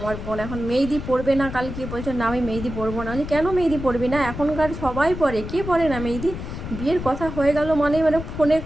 বোন এখন মেহেদি পরবে না, কালকে বলছো না আমি মেহেদি পরবো না। কেন মেহেদি পরবি না? এখনকার সবাই পরে, কে পরে না মেহেদি? বিয়ের কথা হয়ে গেল মানে ফোনে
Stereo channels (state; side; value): noise; left; rumble, 8 dB below the sound